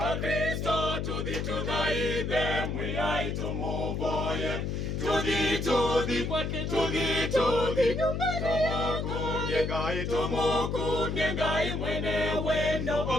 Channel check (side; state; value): left; noise; hum, 2 dB below the sound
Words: tudhi tudhaithe mwiyai tumuvoye. Tudhi tudhi kwake tudhi tudhi tumukumye Ngai tumukumye Ngai mwene wendo